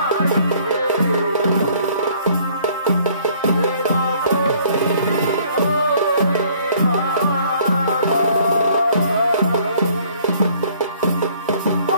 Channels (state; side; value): inverted; both; correlation -0.59